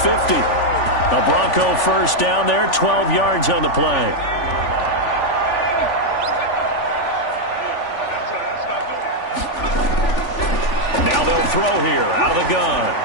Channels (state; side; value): late; right; 3.4 ms